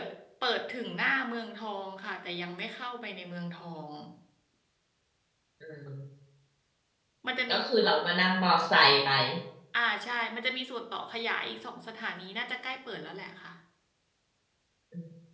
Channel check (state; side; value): identical; both; correlation 1.00